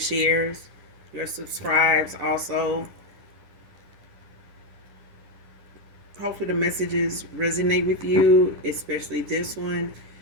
your subscribes. Also, hopefully, the messages resonate with you, especially this one.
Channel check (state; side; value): late; left; 10 ms